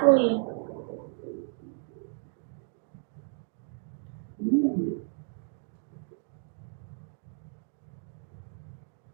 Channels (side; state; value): left; silent; 56 dB below the other